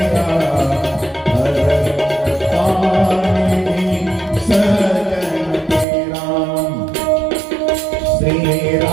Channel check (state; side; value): drops out; left; at 5.9 s